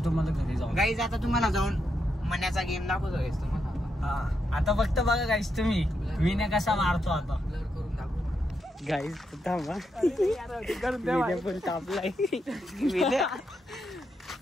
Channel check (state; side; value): normal; both; correlation 0.82